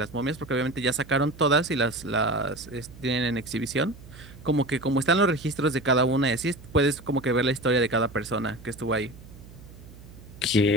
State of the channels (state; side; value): noise; right; hum, 19 dB below the sound